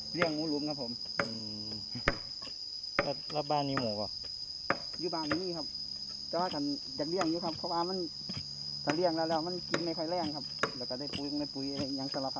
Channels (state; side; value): identical; both; correlation 1.00